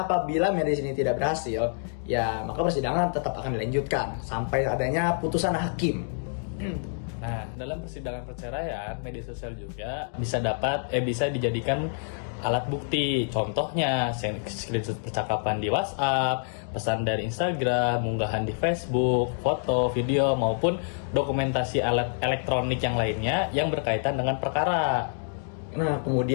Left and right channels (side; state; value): right; silent; digital silence